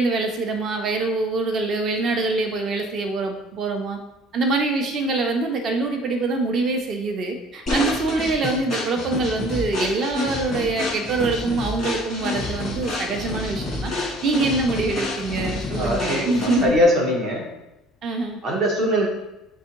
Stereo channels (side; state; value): both; normal; correlation 0.52